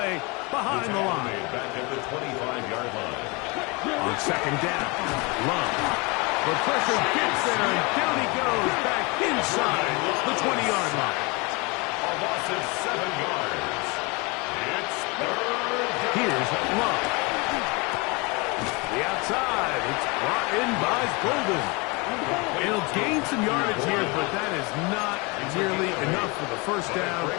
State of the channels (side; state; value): right; quieter; 28.1 dB